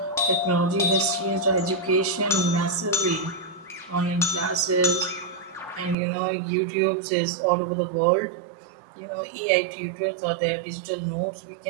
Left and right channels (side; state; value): left; drops out; at 6.0 s